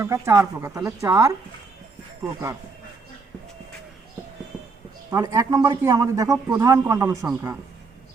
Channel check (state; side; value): quieter; left; 4.4 dB